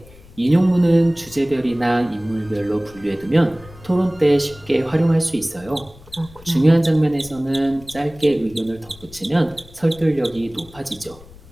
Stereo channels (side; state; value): left; noise; rumble, 22 dB below the sound